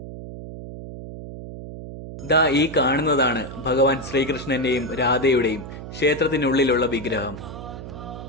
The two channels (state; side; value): noise; right; hum, 11 dB below the sound